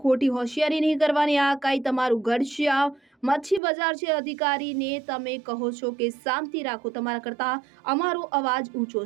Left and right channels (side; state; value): left; drops out; at 3.6 s